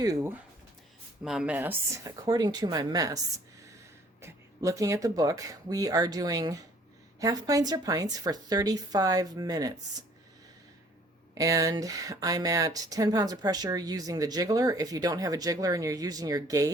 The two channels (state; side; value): normal; both; correlation 0.57